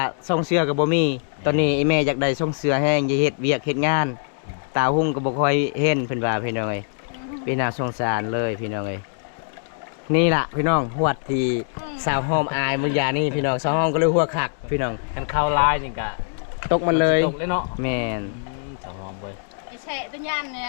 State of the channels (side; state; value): right; silent; 63 dB below the other